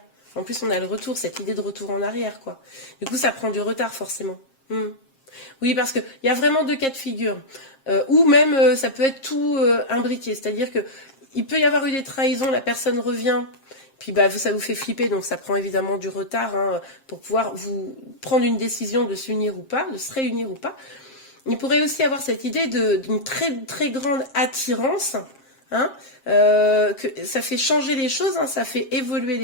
En plus, on a le retour, cette idée de retour en arrière, quoi. Du coup, ça prend du retard, forcément. Hmm. Oui, parce qu'il y a vraiment deux cas de figure. Ou même, ça peut être tout imbriqué. C'est-à-dire que il peut y avoir eu des trahisons, la personne revient, puis bah, ça vous fait flipper, donc ça prend évidemment du retard hein, pour pouvoir vous prendre une décision de s'unir ou pas, de se réunir ou pas. Il pourrait aussi avoir cette idée d'une très, très grande attirance, hein, que ça fait changer les choses, hein, ça fait évoluer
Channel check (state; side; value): late; right; 7.5 ms